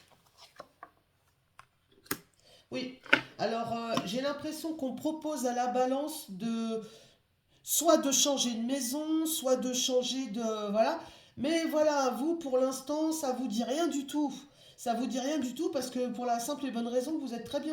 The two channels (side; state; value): both; identical; correlation 1.00